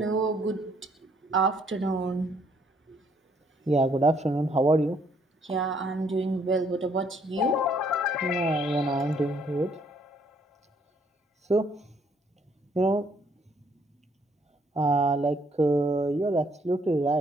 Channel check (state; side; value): normal; both; correlation 0.67